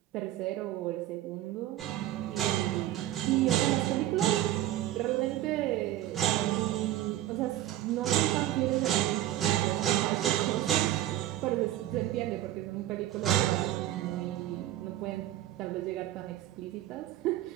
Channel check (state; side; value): quieter; left; 13.7 dB